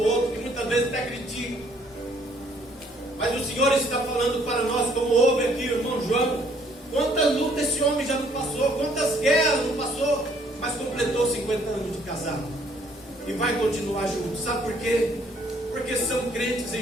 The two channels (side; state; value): both; normal; correlation 0.63